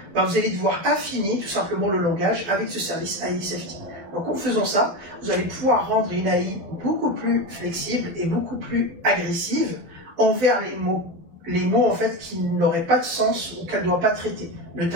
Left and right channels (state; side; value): late; left; 12 ms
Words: ben vous allez devoir affiner tout simplement le langage avec ce service AI Safety. Donc en faisant ça, vous allez pouvoir rendre une AI beaucoup plus flexible et beaucoup plus agressive envers les mots en fait qui n'auraient pas de sens ou qu'elle ne doit pas traiter,